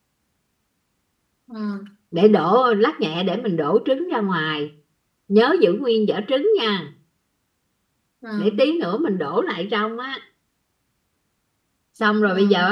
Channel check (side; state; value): both; identical; correlation 1.00